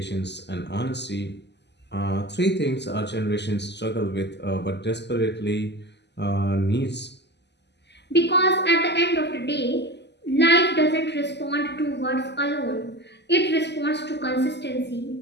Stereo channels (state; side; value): late; right; 0.50 ms